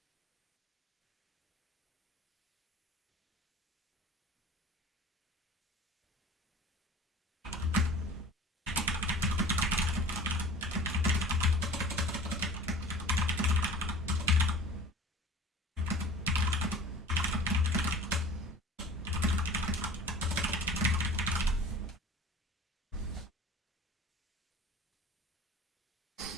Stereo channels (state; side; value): normal; both; correlation 0.42